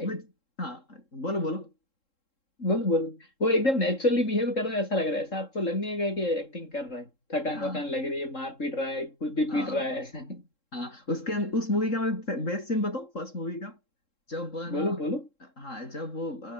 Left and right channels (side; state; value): right; late; 3.7 ms